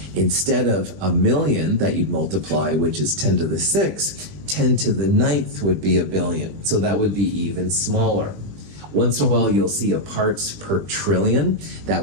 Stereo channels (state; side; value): late; left; 20 ms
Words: Instead of 1,000,000 that you'd multiply, which is 10 to the 6, 10 to the 9th would be a billion. So that would be even smaller. Once in a while, you'll see a parts per trillion.